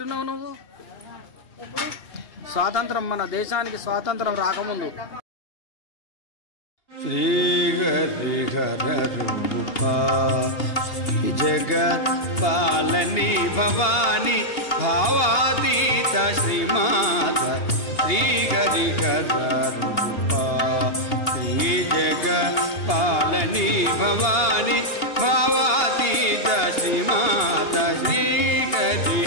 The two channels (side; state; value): right; late; 2.8 ms